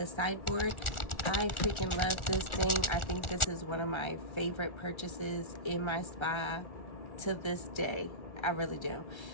sideboard. I freaking love this thing. I think this is one of my favorite purchases in my spa to this day. I really do.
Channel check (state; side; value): late; right; 1.4 ms